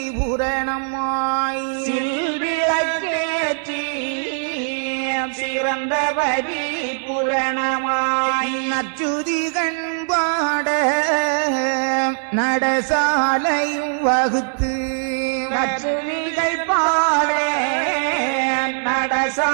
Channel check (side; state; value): left; silent; digital silence